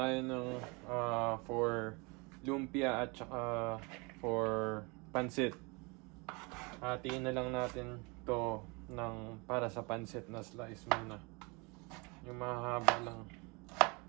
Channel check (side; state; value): left; quieter; 28.8 dB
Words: ng for lumpia at saka for pansit. Hatiin na lang natin to ng para sa pansit na slice muna. Yung mahaba lang.